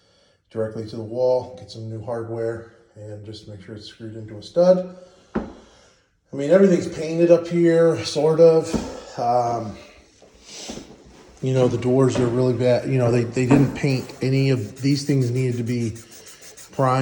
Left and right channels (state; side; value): identical; both; correlation 1.00